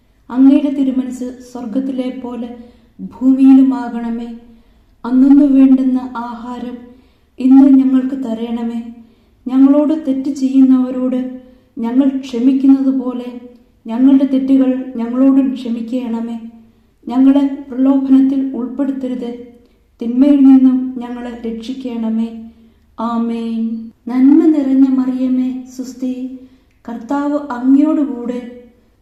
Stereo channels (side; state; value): both; identical; correlation 1.00